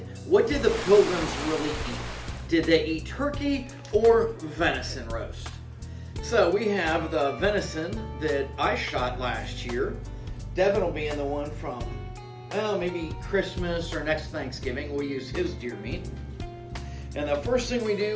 what did the pilgrims really eat? Did they eat turkey or venison roast? So we have the venison that I shot last year. Devin will be in the one from, well, maybe Christmas or next Thanksgiving. We'll use his deer meat. And the first thing we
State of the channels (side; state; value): both; identical; correlation 1.00